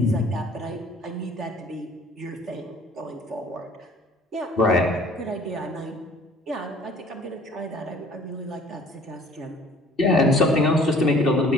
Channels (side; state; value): both; normal; correlation 0.53